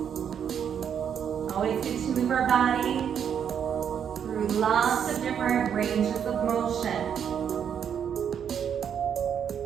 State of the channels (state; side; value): quieter; left; 8.2 dB